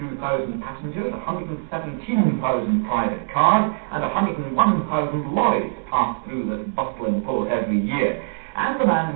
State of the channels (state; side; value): silent; left; 64 dB below the other